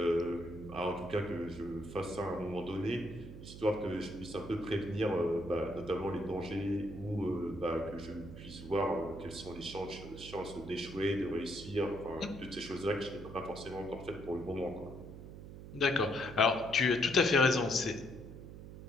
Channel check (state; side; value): noise; right; hum, 13 dB below the sound